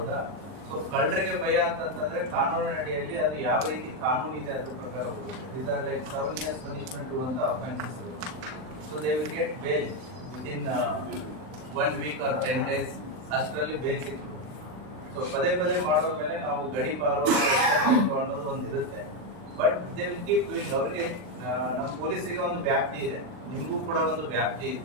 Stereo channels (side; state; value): left; late; 39 ms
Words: ಸೊ ಕಳ್ಳರಿಗೆ ಭಯ ಅಂತಂತಂದ್ರೆ ಕಾನೂನಿನ ಅಡಿಯಲ್ಲಿ ಅದು ಯಾವ ರೀತಿ ಕಾನೂನು ಇದೆ ಅದ್ರ ಪ್ರಕಾರ ಹೋಗುತ್ತೆ. These are like 7 years punishment ಅಂತ offences. So they will get bail within 1 week or 10 days. ಅಷ್ಟರಲ್ಲಿ ಬೇಲ್ ಸಿಕ್ತು. ಸೊ ಪದೇ ಪದೇ ಮಾಡೋದ್ರ ಮೇಲೆ ನಾವು ಗಡಿಪಾರು ಅನ್ನೋದು ಒಂದು ಇರುತ್ತೆ. But they will keep doing. ಅವರಿಗೆ ನಮ್ಮ ಪೊಲೀಸರಿಗೆ ಒಂದು ವ್ಯಾಪ್ತಿ ಇದೆ, ನಿಮಗೂ ಕೂಡ ಒಂದು ವ್ಯಾಪ್ತಿ ಇದೆ.